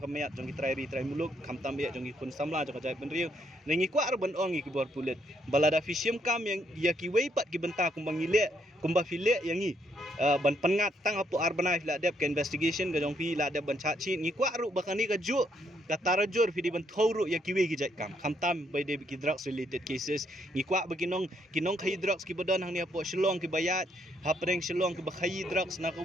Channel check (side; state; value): both; normal; correlation 0.73